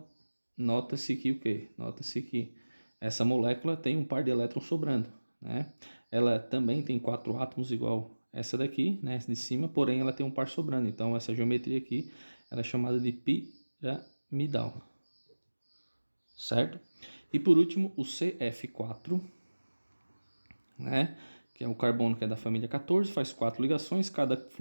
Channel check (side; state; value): both; inverted; correlation -1.00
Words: nota-se que o quê? Nota-se que essa molécula tem um par de elétrons sobrando, né? Ela também tem 4 átomos igual essa daqui, né, de cima, porém ela tem um par sobrando. Então, essa geometria aqui ela é chamada de piramidal, certo? E por último, o CF4, né, que é o carbono que é da família 14, faz 4 ligações, cada